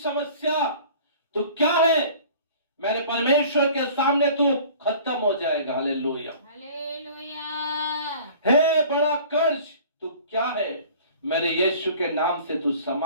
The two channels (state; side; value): inverted; both; correlation -0.47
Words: तू क्या है? मेरे परमेश्वर के सामने तू खत्म हो जाएगा। हालेलुया। हे बड़ा कर्ज तू क्या है? मेरे यीशु के नाम से तू